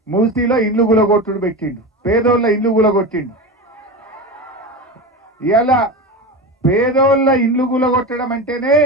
మూసీలో ఇల్లు గులగొట్టుడు పెట్టిండు, పేదోళ్ళ ఇల్లు గులగొట్టిండు. ఇలా పేదోళ్ళ ఇల్లు గులగొట్టడం అంటేనే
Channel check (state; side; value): normal; both; correlation 0.24